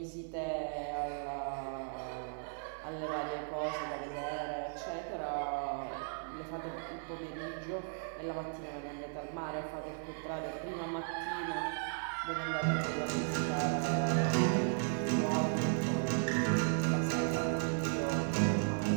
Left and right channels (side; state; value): left; silent; digital silence